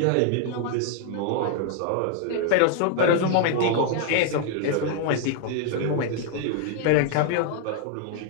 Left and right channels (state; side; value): different; both; correlation 0.01